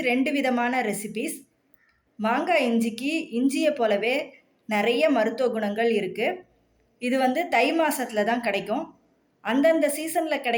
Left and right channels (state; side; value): identical; both; correlation 1.00